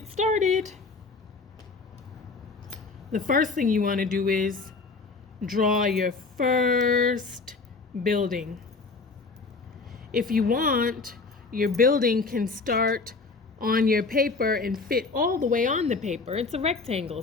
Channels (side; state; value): right; quieter; 4.1 dB